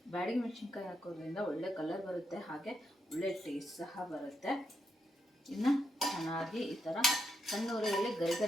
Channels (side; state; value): both; normal; correlation 0.82